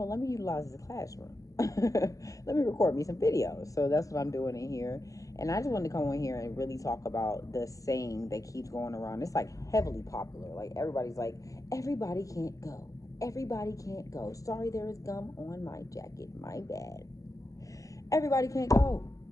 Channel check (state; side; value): late; right; 0.16 ms